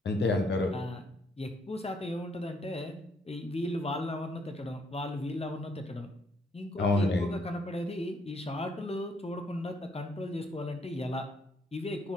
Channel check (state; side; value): normal; both; correlation 0.70